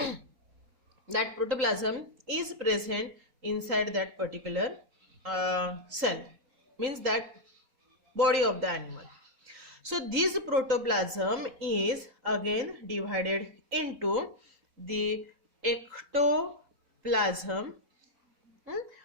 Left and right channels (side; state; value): left; late; 3.8 ms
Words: that protoplasm is present inside that particular cell, means that body of the animal. So this protoplasm is again divided into the ectoplasm,